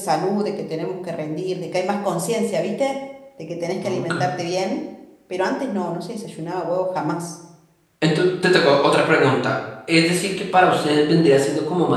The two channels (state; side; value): identical; both; correlation 1.00